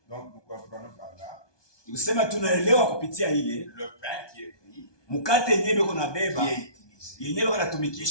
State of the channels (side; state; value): right; late; 1.2 ms